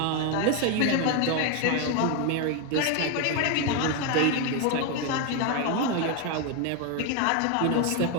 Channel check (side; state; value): both; different; correlation 0.02